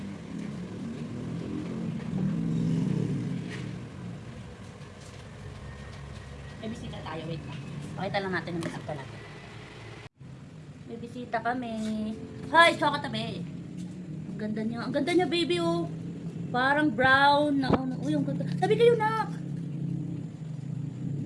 May bisita tayo, wait lang. Pakita lang natin yung bisita natin. May bisita kami. Hi, Choco tabi. Ang ganda niya. Ang ganda niya, baby, oh. Parang brown na ano. Uy, ang ganda. Tabi kayo, nak.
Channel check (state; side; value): identical; both; correlation 1.00